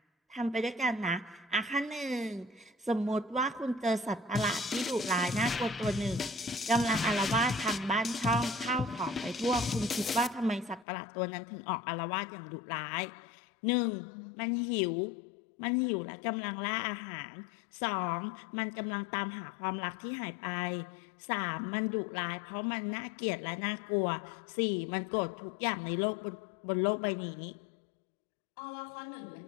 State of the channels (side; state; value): right; drops out; at 10.9 s